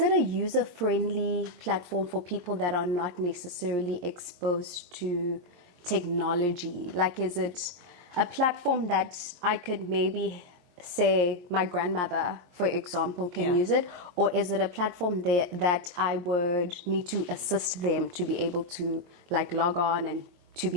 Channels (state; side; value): late; left; 23 ms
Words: it a user-friendly platform for people that are not necessarily exposed to technology? Like, is it a platform that I could maybe say my grandmother, for example, can use it? Or is it a platform that I would need to assist them to be able to log on and to